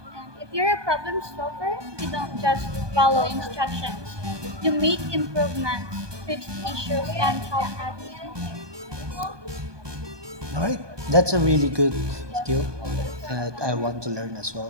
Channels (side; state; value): left; late; 1.2 ms